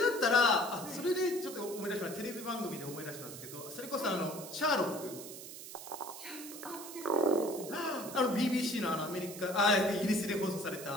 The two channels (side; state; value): right; noise; hiss, 12 dB below the sound